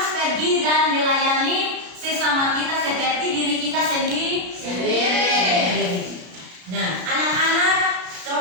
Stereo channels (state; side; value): late; left; 33 ms